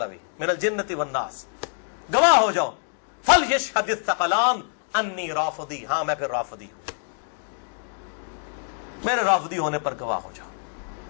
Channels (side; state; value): right; silent; digital silence